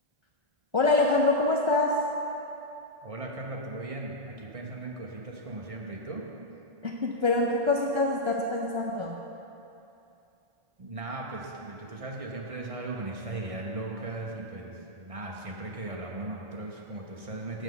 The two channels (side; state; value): left; late; 1.3 ms